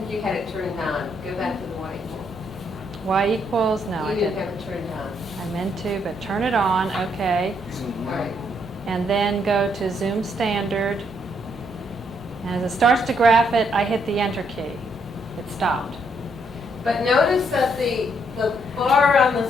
you had it turned on. Go back to the y equals. y equals, no, I You didn't didn't. have it turned on. I meant to, but turn it on, okay. All right. And then go to zoom standard. And as it starts to graph it, I hit the enter key. It stopped. But notice that the bar on the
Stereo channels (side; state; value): both; normal; correlation 0.73